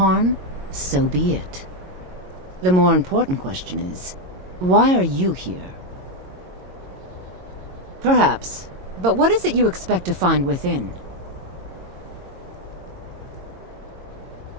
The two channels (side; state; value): left; late; 22 ms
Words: so be it. The more important question is, why are you here? Perhaps, but what is it you expect to find within?